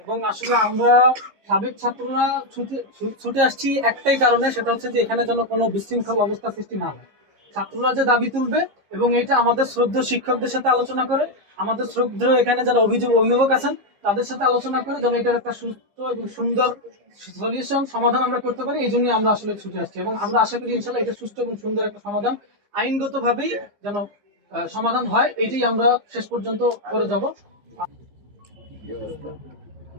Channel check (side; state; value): left; late; 15 ms